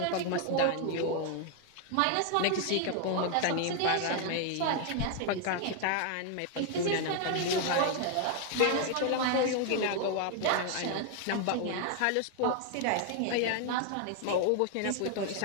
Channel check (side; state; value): both; different; correlation 0.00